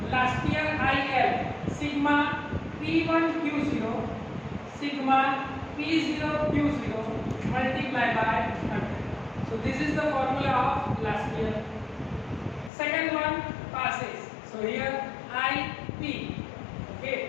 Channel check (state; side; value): drops out; right; at 12.7 s